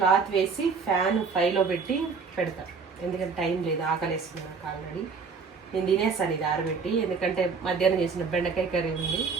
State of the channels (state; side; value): quieter; left; 5.1 dB